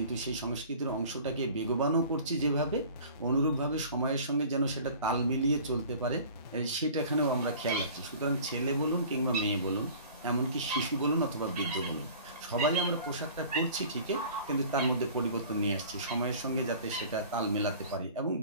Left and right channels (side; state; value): both; inverted; correlation -0.45